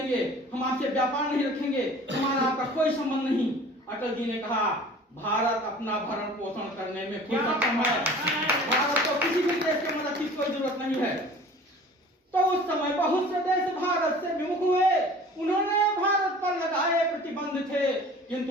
हम आपसे व्यापार नहीं रखेंगे, हमारा आपका कोई संबंध नहीं। अटल जी ने कहा भारत अपना भरण पोषण करने में खुद सक्षम है, भारत को किसी भी देश की मदद की कोई जरूरत नहीं है। तो उस समय बहुत से देश भारत से विमुख हुए, उन्होंने भारत पर लगाए प्रतिबंध थे,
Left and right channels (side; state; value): both; normal; correlation 0.45